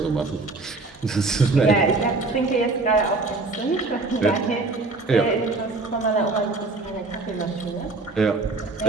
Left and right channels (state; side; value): quieter; left; 3.5 dB